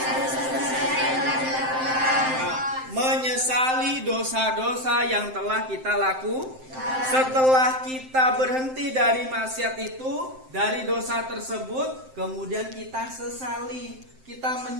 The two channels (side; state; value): left; late; 7.7 ms